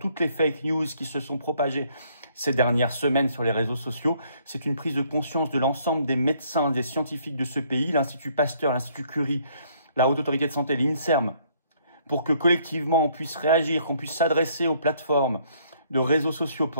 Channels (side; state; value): both; inverted; correlation -0.65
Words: les fake news qui se sont propagées ces dernières semaines sur les réseaux sociaux. C'est une prise de conscience de l'ensemble des médecins, des scientifiques de ce pays, l'Institut Pasteur, l'Institut Curie, la Haute Autorité de Santé, l'INSERM, pour que collectivement on puisse réagir, qu'on puisse s'adresser aux plateformes de réseaux sociaux